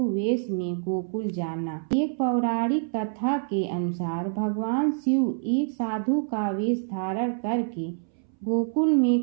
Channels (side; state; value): left; silent; 61 dB below the other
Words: वेश में गोकुल जाना। एक पौराणिक कथा के अनुसार भगवान शिव एक साधु का वेश धारण करके गोकुल में